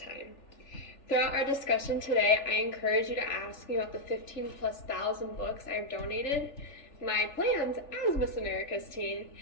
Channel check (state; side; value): late; right; 3.4 ms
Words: Throughout our discussion today, I encourage you to ask me about the 15 plus thousand books I have donated, my plans as Miss America's teen,